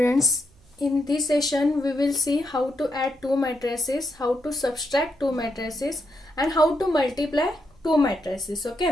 in this session we will see how to add two matrices, how to subtract two matrices and how to multiply two matrices.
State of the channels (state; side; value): noise; right; hum, 29 dB below the sound